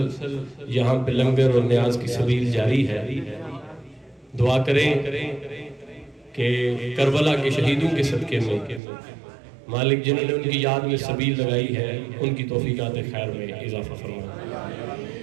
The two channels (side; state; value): left; drops out; at 8.8 s